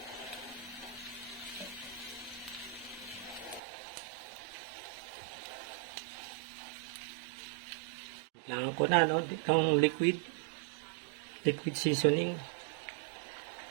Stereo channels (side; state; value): left; drops out; at 3.6 s